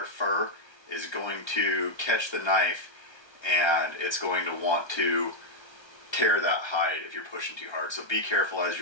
fur is going to catch the knife, and it's going to want to tear that hide if you're pushing too hard. So be careful as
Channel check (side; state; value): right; late; 1.3 ms